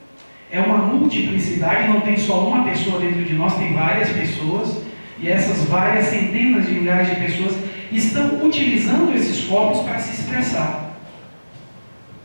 é uma multiplicidade, não tem só uma pessoa dentro de nós, tem várias pessoas, e essas várias centenas de milhares de pessoas estão utilizando esses corpos para se expressar.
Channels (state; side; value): inverted; both; correlation -1.00